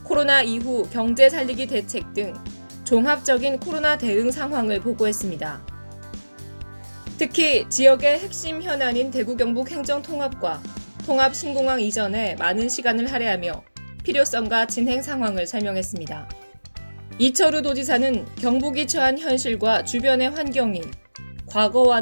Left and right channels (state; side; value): inverted; both; correlation -1.00